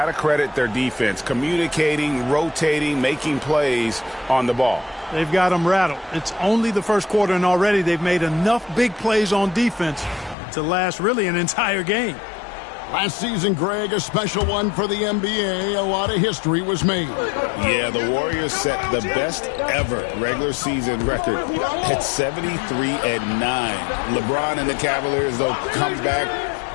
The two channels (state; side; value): drops out; right; at 10.4 s